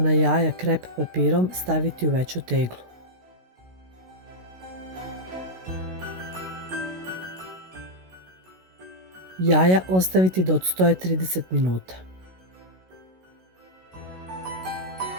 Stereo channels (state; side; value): late; left; 16 ms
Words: jaja krep papirom staviti u veću teglu. Jaja ostaviti da odstoje 30 minuta.